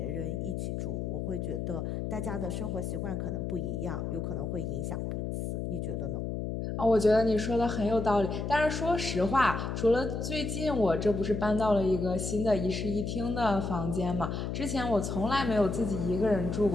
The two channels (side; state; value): left; noise; hum, 3 dB below the sound